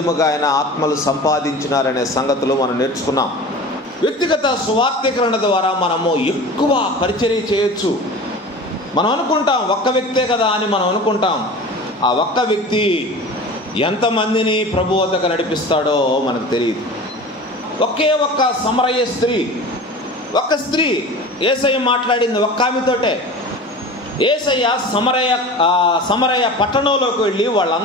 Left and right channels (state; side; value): normal; both; correlation 0.36